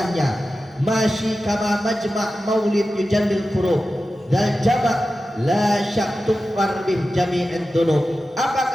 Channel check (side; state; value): both; normal; correlation 0.93